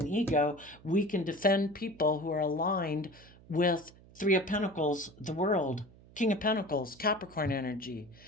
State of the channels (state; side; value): noise; right; hum, 23 dB below the sound